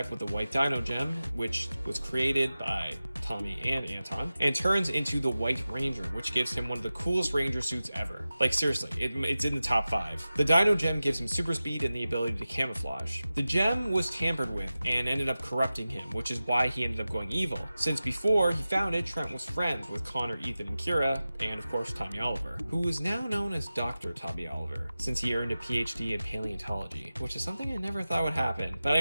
with the White Dino Gem, which was created by Tommy and Anton, and turns into the White Ranger, which gives him one of the coolest Ranger suits ever. Like seriously, it's in the top 5. The Dino Gem gives him super speed and the ability to camouflage. The gem was tampered with and ended up corrupting him, which is why he ended up going evil, since before he found it, Trent was friends with Connor, Ethan, and Kira, and of course Tommy Oliver, who is now known as Dr. Tommy Oliver, since he earned a PhD in paleontology, which is something I never thought would happen. But I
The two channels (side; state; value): both; inverted; correlation -0.95